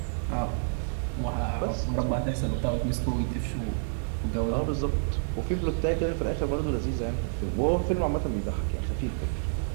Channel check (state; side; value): silent; left; 59 dB below the other